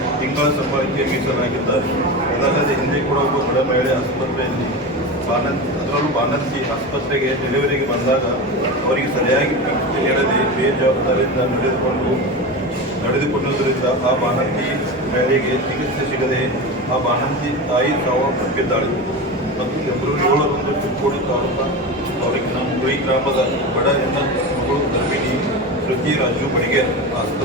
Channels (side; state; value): both; normal; correlation 0.24